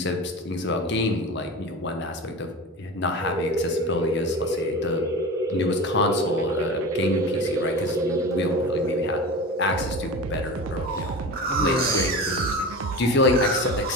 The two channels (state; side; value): normal; both; correlation 0.30